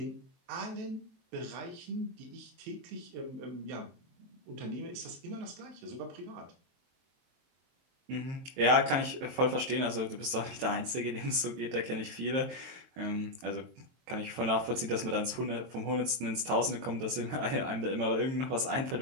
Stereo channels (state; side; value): late; left; 23 ms